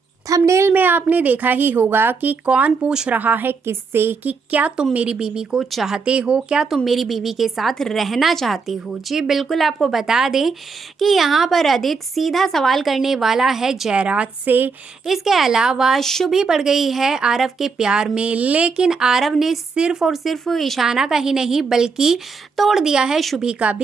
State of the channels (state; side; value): quieter; left; 4.9 dB